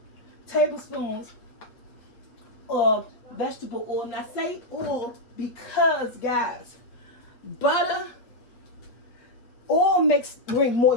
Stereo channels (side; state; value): right; late; 8.2 ms